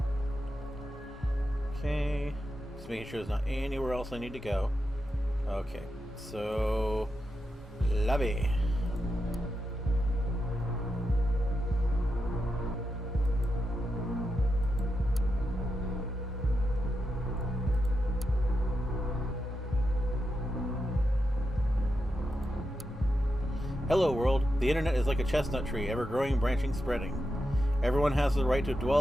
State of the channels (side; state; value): both; normal; correlation 0.87